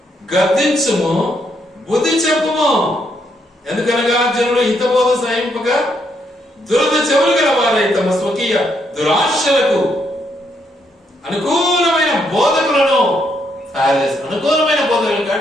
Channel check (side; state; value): both; normal; correlation 0.75